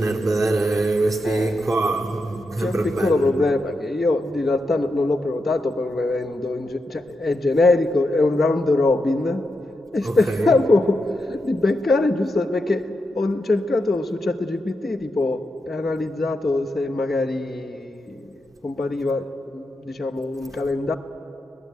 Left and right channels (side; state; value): both; normal; correlation 0.86